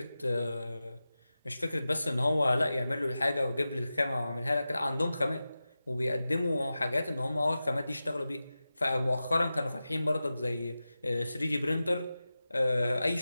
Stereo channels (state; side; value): inverted; both; correlation -0.94